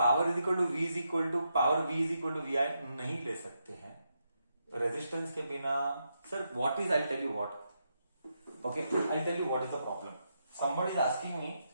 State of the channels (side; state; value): both; inverted; correlation -0.83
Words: is equal to V is equal to power V is equal to V I नहीं ले सकते हैं रेजिस्टेंस के बिना। Sir what is, I tell you what, okay I tell you what is the problem. somebody is asking me,